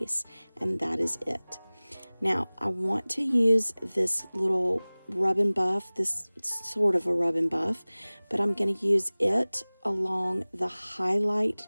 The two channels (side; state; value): both; inverted; correlation -1.00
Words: And that is it. Now, I want to use this little rub and buff, this sort of a rub and buff, but I'm going to use it along the highlight